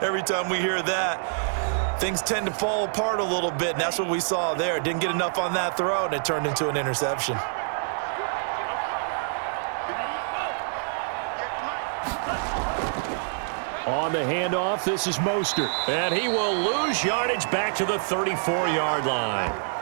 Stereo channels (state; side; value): silent; left; 61 dB below the other